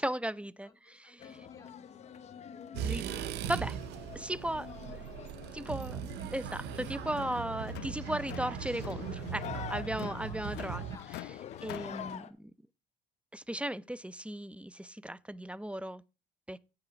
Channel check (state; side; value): normal; both; correlation 0.68